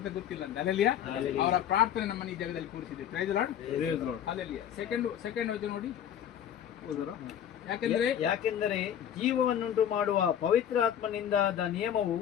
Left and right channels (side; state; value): right; quieter; 9.7 dB